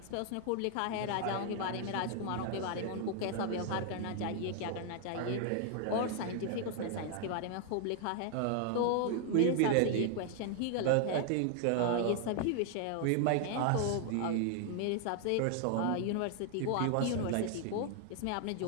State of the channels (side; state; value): both; different; correlation 0.00